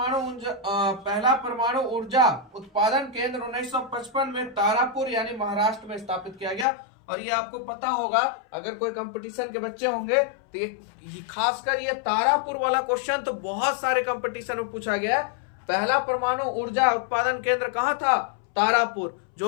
परमाणु ऊर्जा उत्पादन केंद्र 1955 में तारापुर यानी महाराष्ट्र में स्थापित किया गया। और ये आपको पता होगा, अगर कोई कंपटीशन के बच्चे होंगे तो ये खासकर ये तारापुर वाला क्वेश्चन तो बहुत सारे कंपटीशन में पूछा गया है। पहला परमाणु ऊर्जा उत्पादन केंद्र कहाँ था? तारापुर,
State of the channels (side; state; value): right; drops out; at 6.7 s